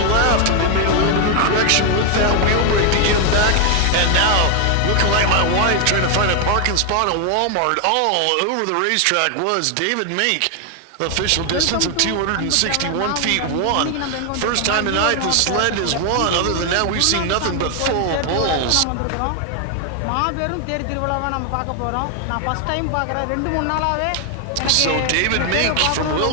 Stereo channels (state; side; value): different; both; correlation 0.01